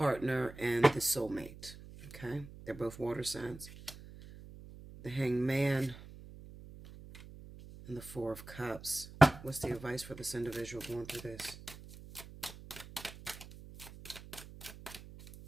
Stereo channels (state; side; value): noise; right; hum, 16 dB below the sound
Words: and the soulmate. Okay? They're both water signs. The Hanged Man and the 4 of Cups. What's the advice for this individual going through this?